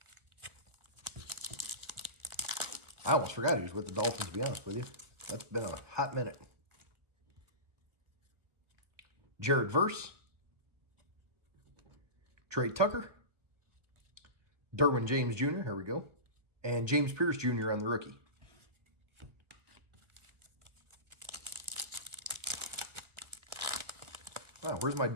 I almost forgot he was with the Dolphins, to be honest with you. That's been a hot minute. Jared Verse, Trey Tucker, Derwin James Jr., here we go, and James Pierce Jr. on the rookie. Wow, where's my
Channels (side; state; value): left; late; 1.5 ms